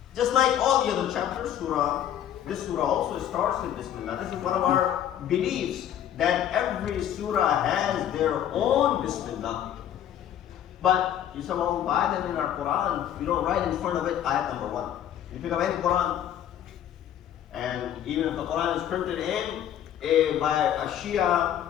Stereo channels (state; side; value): quieter; right; 10.6 dB